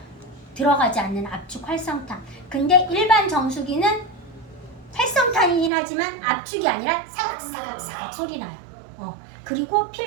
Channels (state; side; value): drops out; left; at 5.7 s